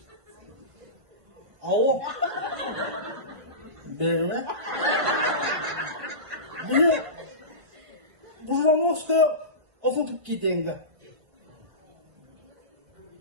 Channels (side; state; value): left; late; 1.5 ms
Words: Al. Böyle. Bunu buradan Moskova okutup gideyim.